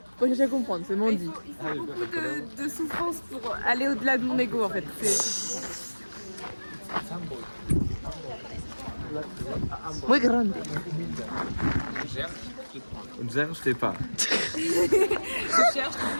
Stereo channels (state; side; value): inverted; both; correlation -1.00